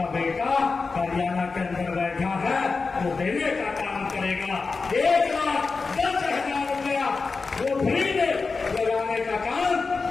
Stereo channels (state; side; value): quieter; right; 4.4 dB